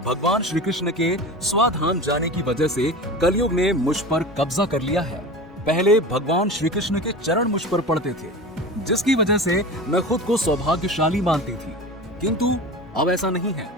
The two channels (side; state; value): both; normal; correlation 0.31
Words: भगवान श्री कृष्ण के स्वाधाम जाने की वजह से कलयुग ने मुझ पर कब्जा कर लिया है। पहले भगवान श्री कृष्ण के चरण मुझ पर पड़ते थे, जिसकी वजह से मैं खुद को सौभाग्यशाली मानती थी, किंतु अब ऐसा नहीं है।